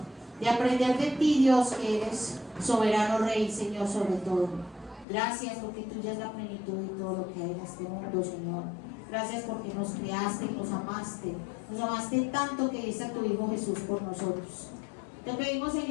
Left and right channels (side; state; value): right; drops out; at 5.1 s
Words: De aprender de ti, Dios, que eres soberano Rey, Señor, sobre todo. Gracias porque tú ya es la plenitud de todo lo que hay en este mundo, Señor. Gracias porque nos creaste y nos amaste. Nos amaste tanto que diste a tu Hijo Jesús por nosotros. Te pedimos,